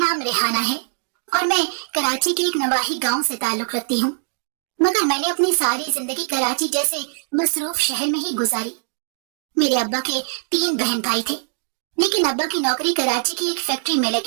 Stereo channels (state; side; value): silent; left; digital silence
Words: रेहाना है और मैं कराची के एक नवाही गांव से ताल्लुक रखती हूँ। मगर मैंने अपनी सारी जिंदगी कराची जैसे मसरूफ शहर में ही गुजारी। मेरे अब्बा के 3 बहन भाई थे, लेकिन अब्बा की नौकरी कराची की एक फैक्ट्री में